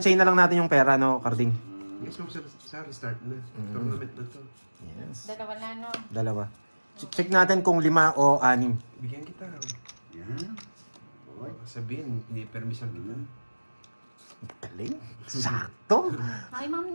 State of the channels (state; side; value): inverted; both; correlation -1.00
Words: na lang natin yung pera, no, Carding? Yes, mo sa restart na. Tournament na to. Yes. Dalawa na, no? Dalawa. Check natin kung 5 o 6. Bigyan kita. Yan. Boy. Sabihin, hindi permission kita. Galing. Sakto. Hi, Ma'am